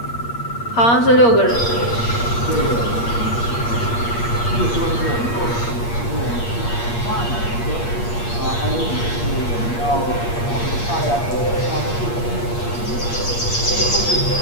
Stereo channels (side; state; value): right; late; 8.5 ms